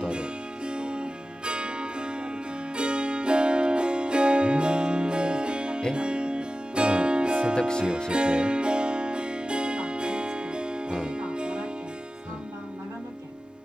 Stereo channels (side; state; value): both; normal; correlation 0.95